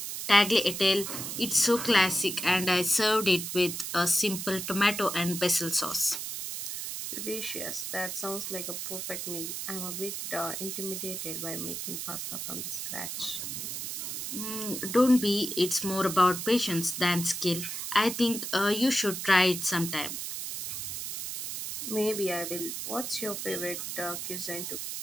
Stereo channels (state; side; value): noise; right; hiss, 5 dB below the sound